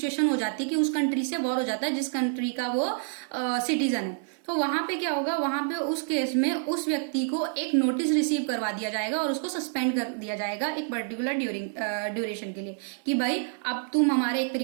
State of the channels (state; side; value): silent; left; digital silence